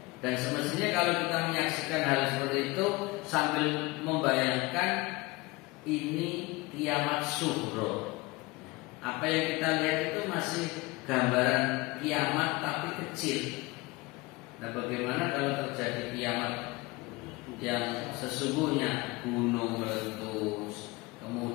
Dan semestinya kalau kita menyaksikan hal seperti itu sambil membayangkan ini kiamat sughra. Apa yang kita lihat itu masih gambaran kiamat tapi kecil. Nah, bagaimana kalau terjadi kiamat yang sesungguhnya, gunung meletus,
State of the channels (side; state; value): right; quieter; 22.7 dB